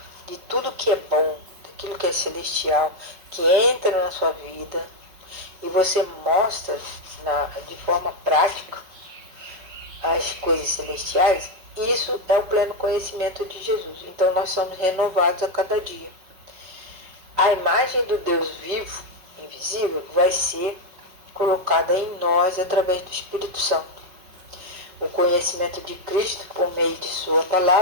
de tudo que é bom, daquilo que é celestial, que entra na sua vida, e você mostra de forma prática as coisas celestiais, isso é o pleno conhecimento de Jesus. Então nós somos renovados a cada dia. A imagem do Deus vivo, invisível, vai ser colocada em nós através do Espírito Santo. O conhecimento de Cristo, por meio de sua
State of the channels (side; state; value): left; late; 5.4 ms